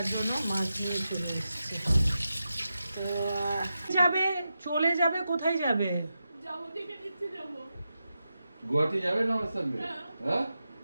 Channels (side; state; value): both; inverted; correlation -0.89